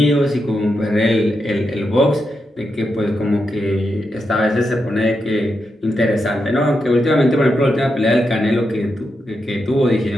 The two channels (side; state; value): both; normal; correlation 0.85